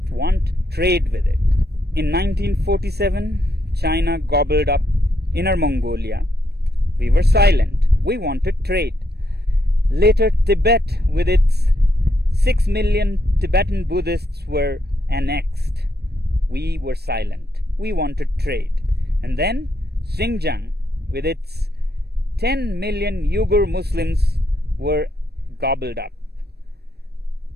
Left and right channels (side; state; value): left; late; 0.47 ms